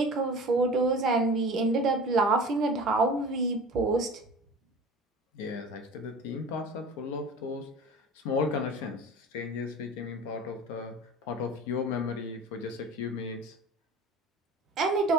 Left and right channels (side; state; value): both; normal; correlation 0.38